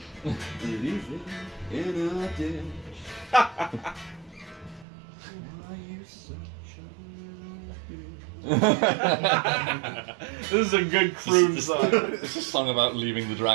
Leave him in a ditch. Why you such a little bitch? This is a good croon song. It's a song about leaving the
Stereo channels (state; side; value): drops out; left; at 4.9 s